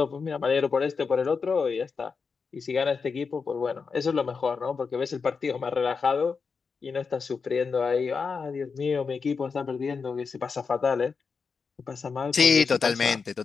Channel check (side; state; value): right; quieter; 5.2 dB